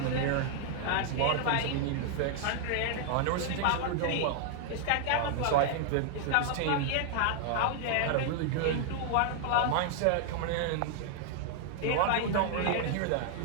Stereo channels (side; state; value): both; different; correlation 0.00